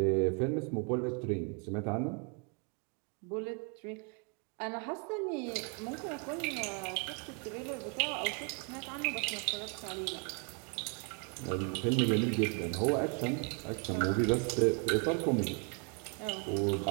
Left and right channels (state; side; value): quieter; left; 37.7 dB